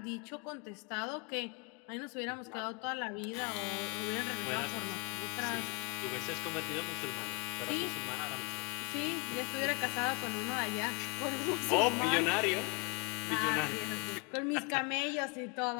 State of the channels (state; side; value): quieter; right; 32.3 dB